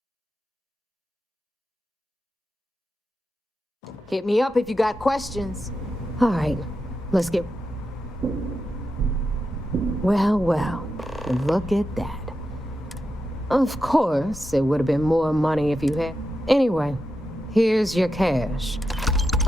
Hit me up if you got questions. All right, let's get... Well, look at that. Of course, it would have been more money if you had... Anyway, here's your cash.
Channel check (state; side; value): normal; both; correlation 0.88